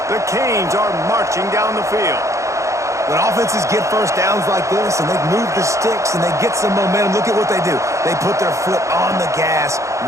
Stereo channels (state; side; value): late; left; 0.15 ms